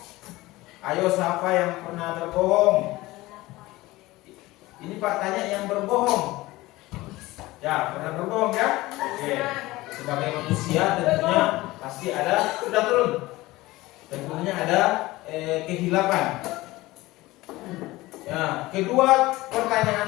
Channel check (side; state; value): right; quieter; 19.2 dB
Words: Ayo, siapa yang pernah berbohong? Ini Pak tanya yang berbohong. Ya, pernah berbohong ya? Oke. Sebagai manusia tentunya pasti ada, sudah turun. Tentunya ada kehilapan. Ya, kedua